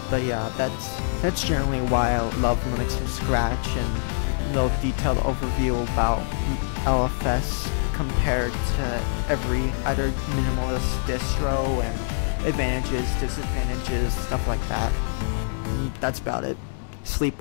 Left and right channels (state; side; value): silent; right; digital silence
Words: But yeah, that's generally why I love Linux from scratch, and a little detailed overview about LFS compared to every other minimalist distro and advantages, disadvantages, stuff like that. That's about it. Sleep